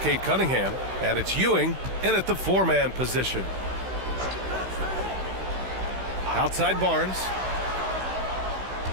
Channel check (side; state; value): left; late; 16 ms